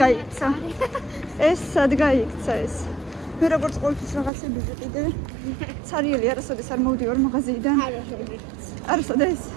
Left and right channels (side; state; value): left; drops out; at 4.3 s